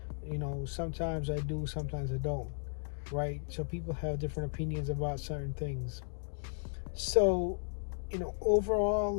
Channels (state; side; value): silent; right; digital silence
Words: sometimes I do, sometimes I don't, right? So people have different opinions about certain things. So